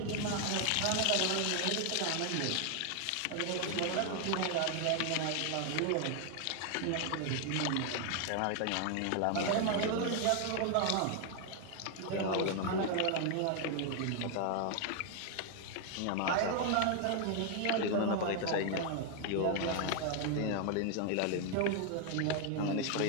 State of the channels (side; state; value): both; different; correlation 0.00